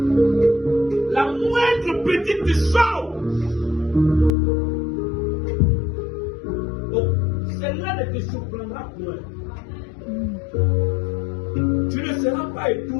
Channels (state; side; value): drops out; right; at 4.3 s